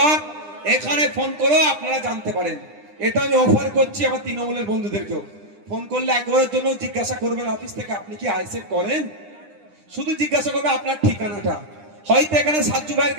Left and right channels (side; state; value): left; late; 9.9 ms